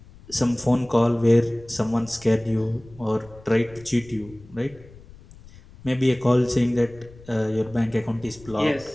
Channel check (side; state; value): left; noise; rumble, 22 dB below the sound